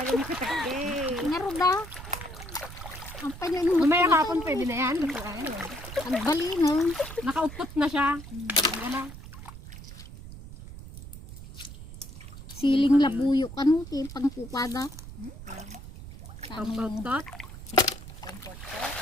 makatakde. Naruda. Ang panyo nung Mamaya kapon pwede na yan. ang bali no. Nakaupot na siya. Wala. Siling labuyo kanu ti pangkupada. Pampautot. Pampot.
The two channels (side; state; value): right; noise; rumble, 13 dB below the sound